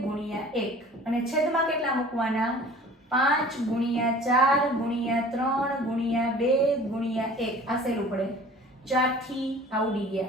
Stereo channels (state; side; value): normal; both; correlation 0.46